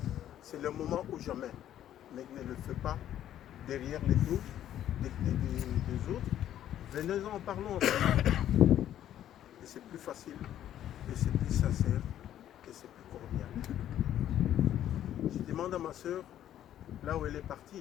c'est le moment ou jamais. Mais ne le fais pas derrière les dos des autres. Venez-en, parlons. Et c'est plus facile, et c'est plus sincère, et c'est plus cordial. Je demande à ma soeur, là où elle est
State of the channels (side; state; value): right; quieter; 11.4 dB